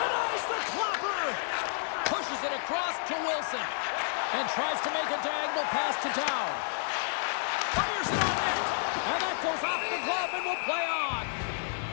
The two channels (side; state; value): right; silent; 57 dB below the other